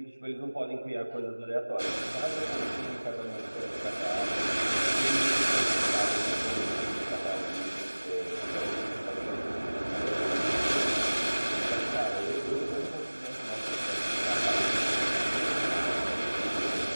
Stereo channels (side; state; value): both; inverted; correlation -1.00